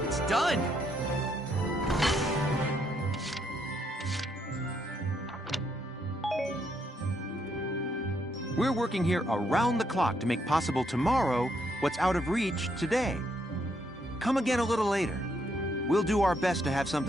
it's done. We're working here around the clock to make possible tomorrow what's out of reach today. Come again a little later. We'll do our best to have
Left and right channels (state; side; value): normal; both; correlation 0.75